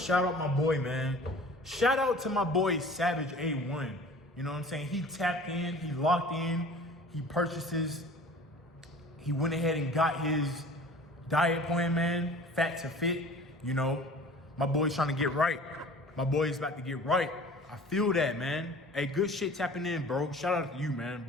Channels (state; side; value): normal; both; correlation 0.45